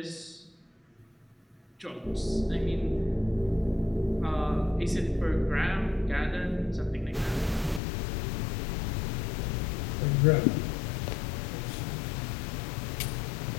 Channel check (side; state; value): right; drops out; at 7.8 s